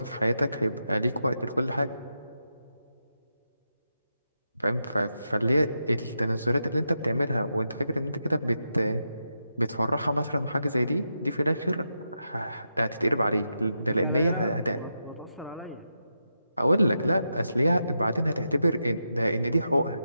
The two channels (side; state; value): both; inverted; correlation -0.86